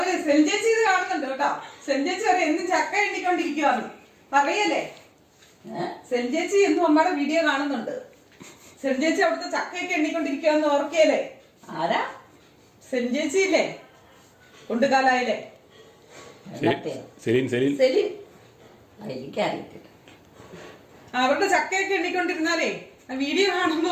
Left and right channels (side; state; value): both; identical; correlation 1.00